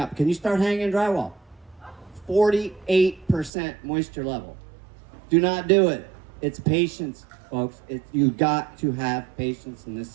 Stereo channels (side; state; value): left; drops out; at 3.5 s